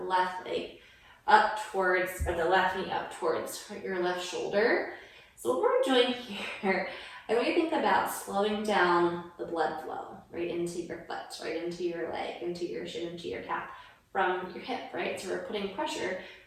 left leg up towards, or the left knee up towards your left shoulder. So what we're doing here, I want you to think about slowing down the blood flow right into your foot, right into your leg, into your shin, into your calf, from your hip, right? So we're putting pressure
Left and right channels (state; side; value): identical; both; correlation 1.00